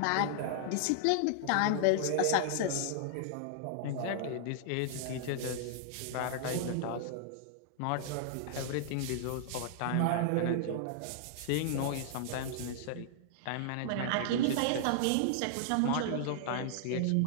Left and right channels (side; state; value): both; different; correlation -0.01